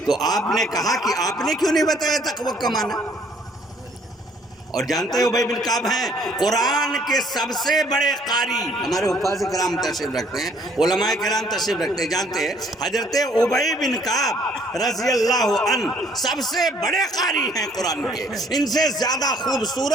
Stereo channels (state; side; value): normal; both; correlation 0.62